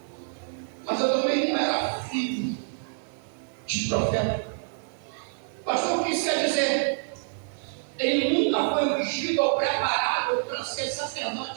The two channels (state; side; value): silent; left; digital silence